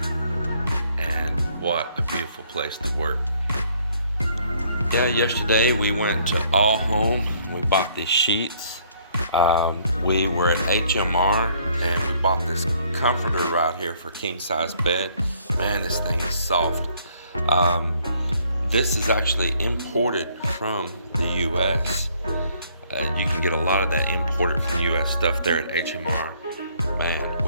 and what a beautiful place to work. Yeah, yesterday we went to All Home. We bought these sheets. We were at HMR and we bought this comforter right here for king size bed. Man, this thing is soft. This is actually imported from the US. You can get a lot of that imported from US stuff there at HMR. Man,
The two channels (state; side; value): inverted; both; correlation -0.64